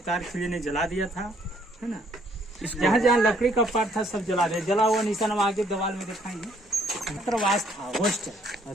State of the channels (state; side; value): normal; both; correlation 0.65